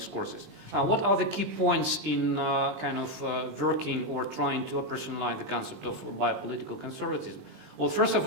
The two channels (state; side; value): late; left; 20 ms